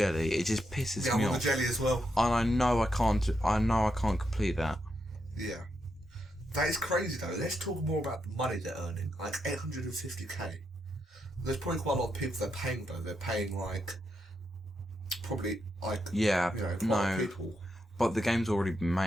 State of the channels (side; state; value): both; normal; correlation 0.82